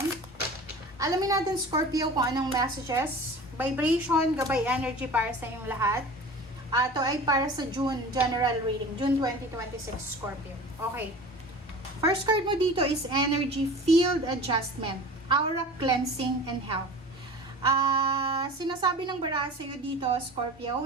Alamin natin Scorpio kung anong messages, vibration, gabay energy para sa inyong lahat. Ito ay para sa June general reading, June 2026 Scorpio. Okay. First card mo dito is energy field adjustment, aura cleansing and health. Sinasabi ng baraha sa'yo dito, Scorpio,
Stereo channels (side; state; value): both; normal; correlation 0.38